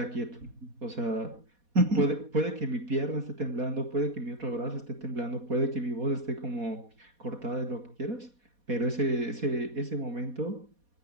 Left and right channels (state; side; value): late; left; 4.2 ms